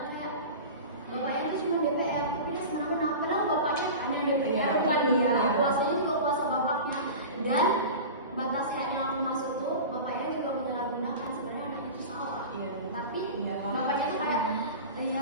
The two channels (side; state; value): both; inverted; correlation -0.31